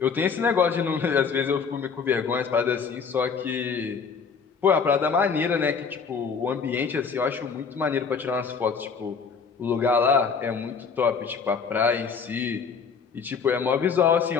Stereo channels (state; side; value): quieter; right; 5.7 dB